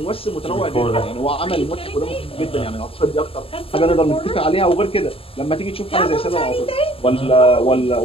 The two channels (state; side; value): late; right; 0.27 ms